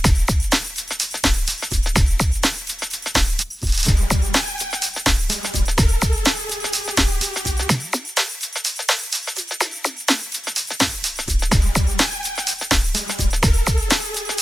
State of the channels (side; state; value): both; normal; correlation 0.95